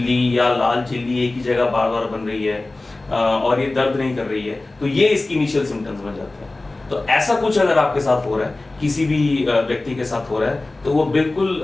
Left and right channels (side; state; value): right; quieter; 3.0 dB